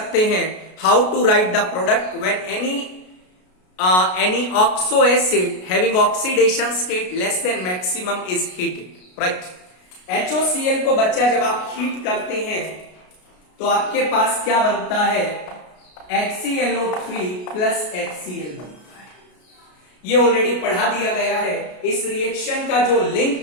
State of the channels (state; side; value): late; right; 33 ms